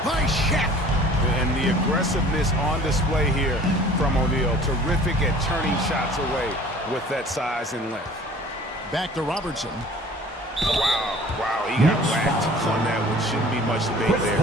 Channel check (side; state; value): both; normal; correlation 0.49